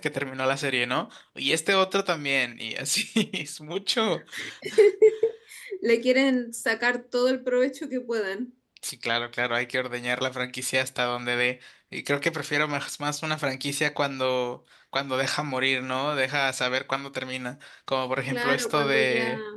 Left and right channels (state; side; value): identical; both; correlation 1.00